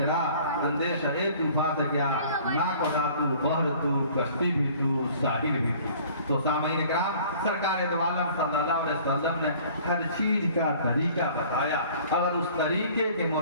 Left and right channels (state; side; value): inverted; both; correlation -0.51